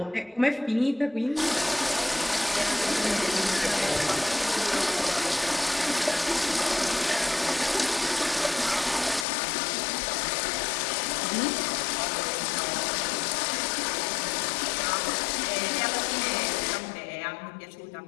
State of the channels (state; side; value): drops out; right; at 9.2 s